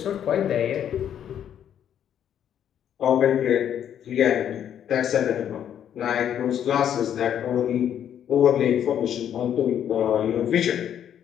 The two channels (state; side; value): quieter; right; 9.6 dB